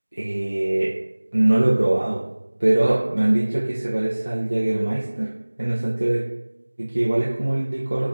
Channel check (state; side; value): inverted; both; correlation -1.00